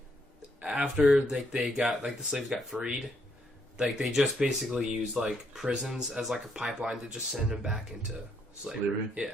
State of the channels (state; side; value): normal; both; correlation 0.74